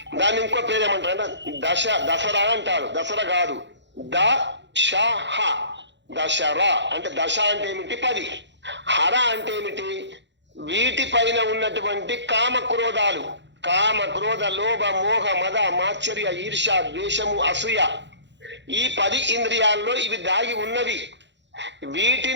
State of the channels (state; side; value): late; left; 0.52 ms